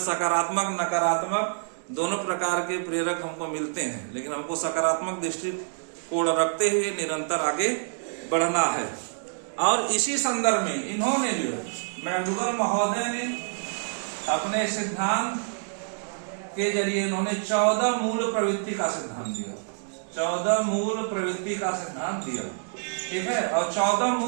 सकारात्मक नकारात्मक दोनों प्रकार के प्रेरक हमको मिलते हैं, लेकिन हमको सकारात्मक दृष्टिकोण रखते हुए निरंतर आगे बढ़ना है। और इसी संदर्भ में इन्होंने जो मैकडूगल महोदय ने अपने सिद्धांत के जरिए इन्होंने 14 मूल प्रवृत्ति का सिद्धांत दिया। 14 मूल प्रवृत्ति का सिद्धांत दिया। ठीक है, और 14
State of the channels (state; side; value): silent; left; digital silence